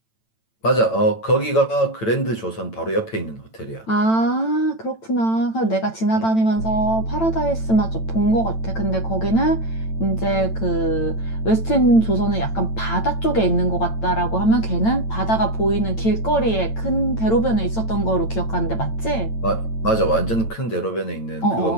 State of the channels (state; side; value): late; right; 8.9 ms